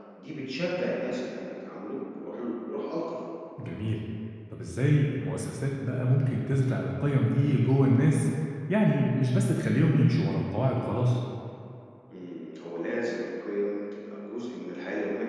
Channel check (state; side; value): identical; both; correlation 1.00